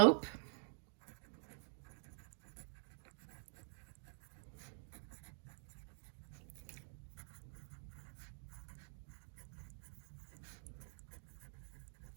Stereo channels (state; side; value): silent; left; digital silence